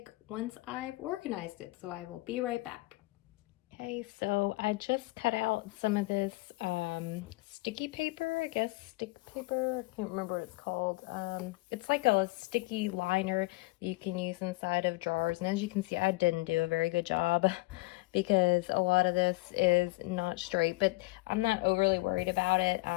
once I've organized it. So I will be right back. Okay, so I just cut out some of this sticky paper, I guess, stick paper, I can't remember what it's called. It's like a sticky liner that you can use inside of drawers, and as you can see, I didn't do a very good job because a lot of this is not straight, but I'm not overly worried about it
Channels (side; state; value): right; quieter; 23.0 dB